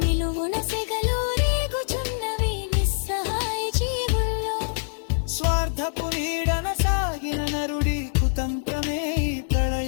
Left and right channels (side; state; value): right; silent; 62 dB below the other